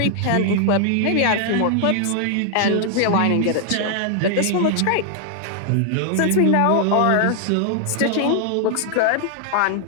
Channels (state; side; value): different; both; correlation 0.00